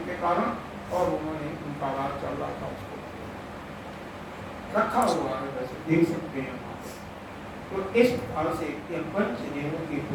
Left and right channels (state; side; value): identical; both; correlation 1.00